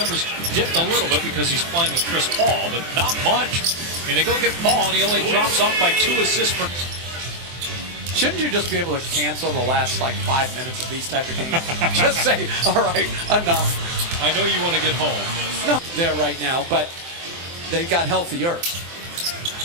dipped a little bit because he's playing with Chris Paul, but not much. And they go get Paul, and he only drops off by 2 assists per... Shouldn't you just be able to cancel the last, 5 minutes of these type of games? Just say, all right, enough. I know you want to get home. No, there right now, but they got healthier.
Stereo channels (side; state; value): left; late; 24 ms